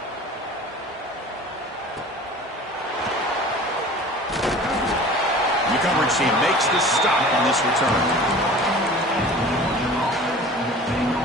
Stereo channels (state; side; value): normal; both; correlation 0.42